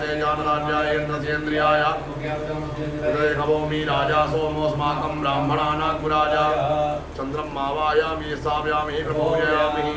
जानराज्याय इन्द्रसेन्द्रियाय नमोमि राजा सोमोऽस्माकं ब्राह्मणानाग्राजा चंद्रं मावायामि स्थापयामि प्रपूजयामि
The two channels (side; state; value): both; identical; correlation 1.00